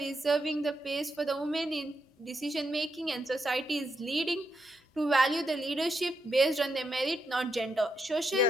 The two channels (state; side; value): normal; both; correlation 0.82